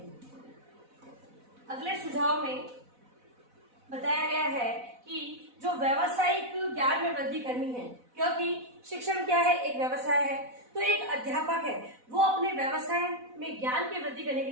अगले सुझाव में बताया गया है कि जो व्यावसायिक ज्ञान में वृद्धि करनी है, क्योंकि शिक्षण क्या है, एक व्यवसाय है, तो एक अध्यापक है वो अपने व्यवसाय में ज्ञान की वृद्धि करने के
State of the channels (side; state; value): left; late; 4.0 ms